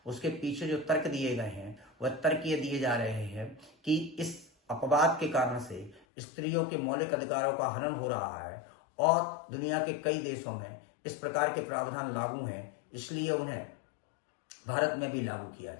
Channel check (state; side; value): drops out; right; at 6.0 s